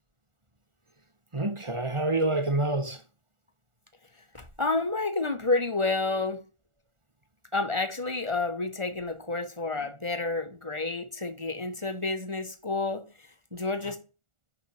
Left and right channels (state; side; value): late; left; 1.4 ms